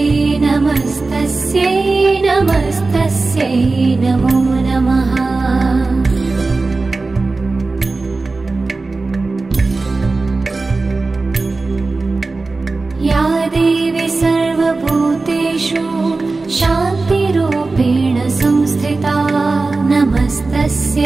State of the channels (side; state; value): left; quieter; 3.6 dB